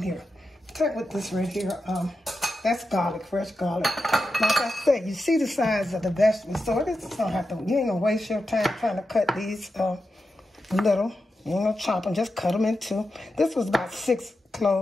here. Check with this right here. That's garlic, fresh garlic. Like I said, you see the size of the vegetables, so this don't have to, you ain't going to waste your time trying to cut these little. You ain't going to chop them, just cut them in two. This was about 5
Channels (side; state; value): both; normal; correlation 0.89